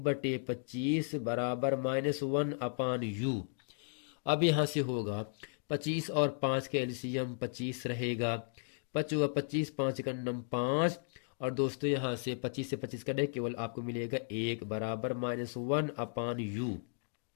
बराबर -1/u। अब यहाँ से होगा 25 और 5 के एलसीएम 25 रहेगा, 5 हुआ 25, 5 का नम 5। और दोस्तों यहाँ से 25 से 25 कटे केवल आपको मिलेगा 1 बराबर -1/u।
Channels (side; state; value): right; silent; digital silence